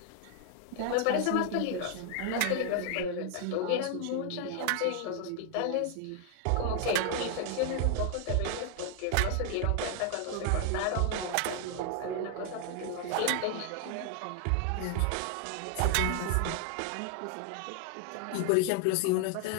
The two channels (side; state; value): both; different; correlation 0.00